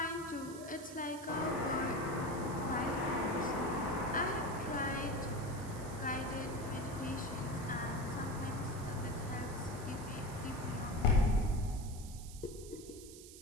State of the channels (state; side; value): noise; right; hiss, 15 dB below the sound